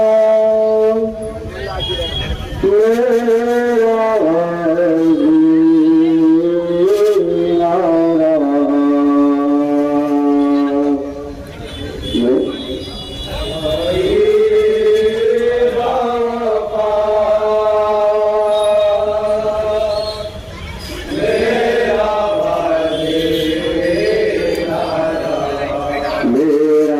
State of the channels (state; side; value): identical; both; correlation 1.00